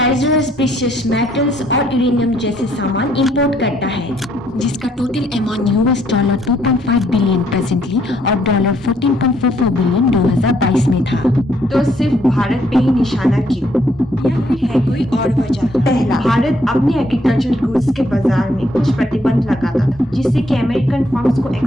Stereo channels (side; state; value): both; normal; correlation 0.69